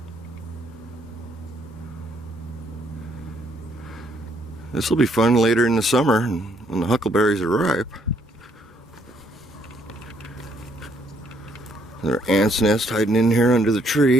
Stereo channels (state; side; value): normal; both; correlation 0.69